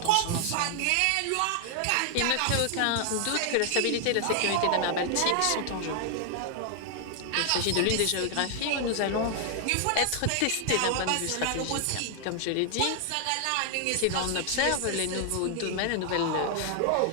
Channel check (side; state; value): both; different; correlation 0.00